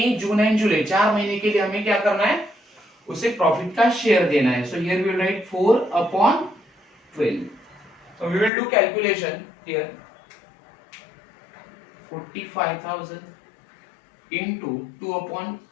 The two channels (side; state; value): right; drops out; at 8.5 s